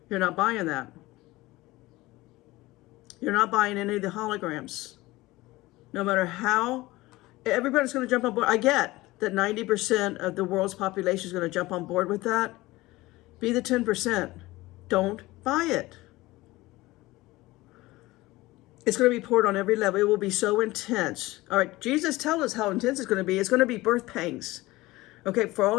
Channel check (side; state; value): right; quieter; 19.4 dB